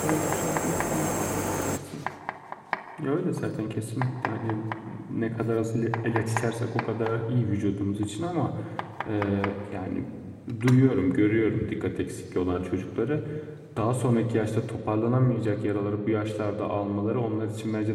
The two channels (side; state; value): both; identical; correlation 1.00